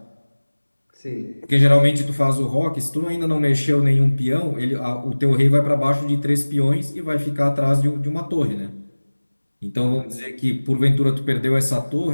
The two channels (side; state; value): both; inverted; correlation -1.00